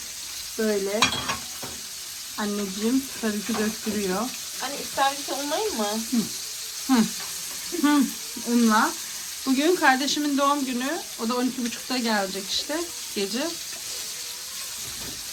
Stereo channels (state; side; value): identical; both; correlation 1.00